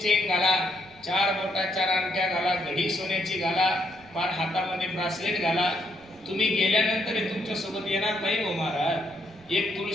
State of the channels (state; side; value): noise; right; rumble, 26 dB below the sound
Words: घाला, 4 बोटा 4 अंगठ्या घाला, घडी सोन्याची घाला, पार हातामध्ये ब्रासलेट घाला. तुम्ही गेल्यानंतर तुमच्या सोबत येणार नाही हो महाराज. एक